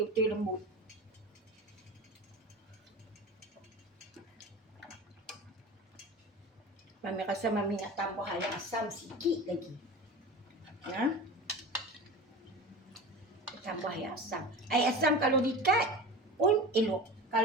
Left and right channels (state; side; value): normal; both; correlation 0.33